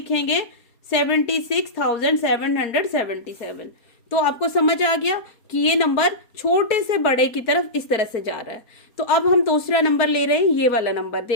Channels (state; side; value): late; right; 4.3 ms